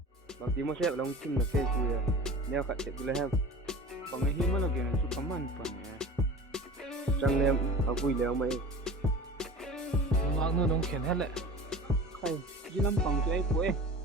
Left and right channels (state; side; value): normal; both; correlation 0.37